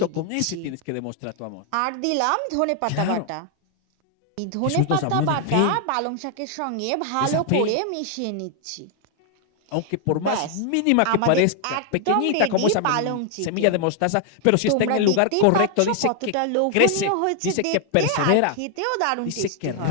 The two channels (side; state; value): both; different; correlation 0.00